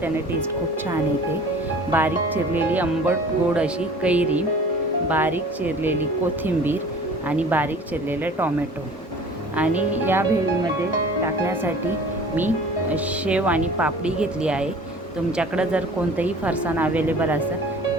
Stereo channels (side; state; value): both; normal; correlation 0.45